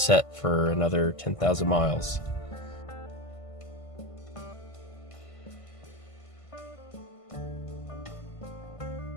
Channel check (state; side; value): late; right; 1.5 ms